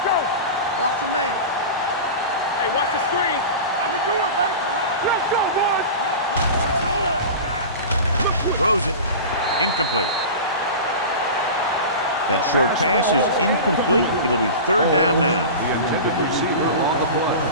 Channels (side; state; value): both; inverted; correlation -0.30